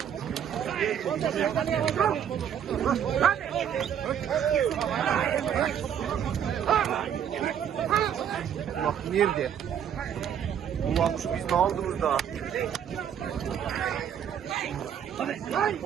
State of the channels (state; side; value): quieter; left; 8.9 dB